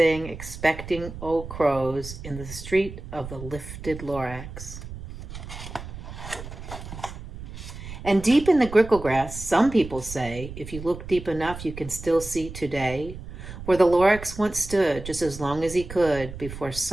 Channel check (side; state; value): right; noise; rumble, 11 dB below the sound